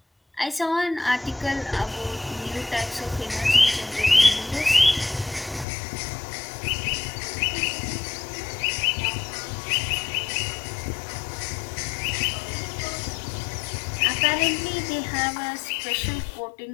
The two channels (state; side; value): drops out; right; at 5.7 s